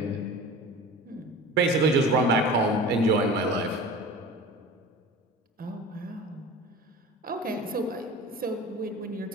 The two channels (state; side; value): normal; both; correlation 0.37